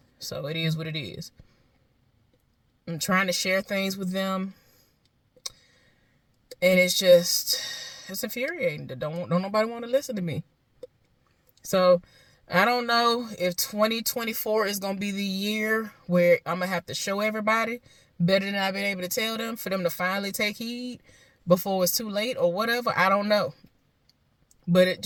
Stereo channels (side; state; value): both; identical; correlation 1.00